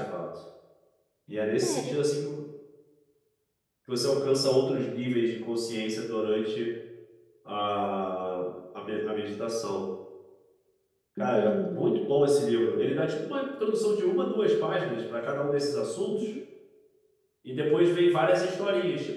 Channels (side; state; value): both; identical; correlation 1.00